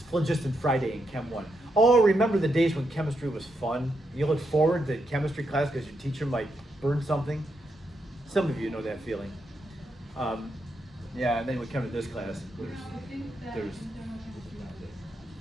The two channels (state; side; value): normal; both; correlation 0.82